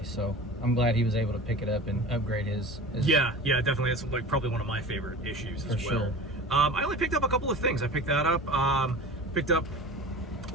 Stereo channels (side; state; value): both; normal; correlation 0.36